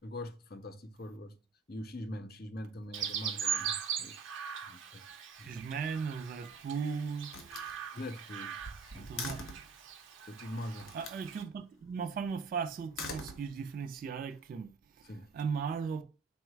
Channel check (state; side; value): quieter; left; 4.6 dB